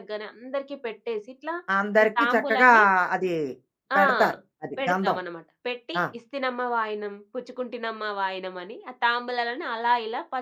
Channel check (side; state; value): both; identical; correlation 1.00